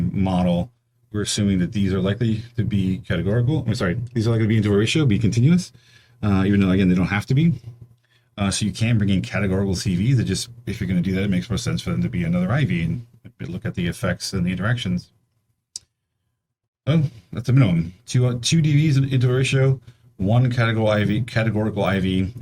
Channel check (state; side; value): identical; both; correlation 1.00